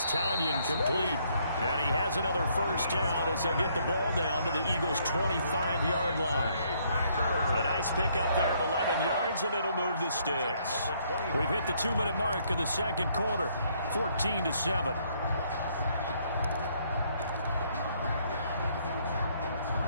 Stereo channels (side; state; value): both; inverted; correlation -0.68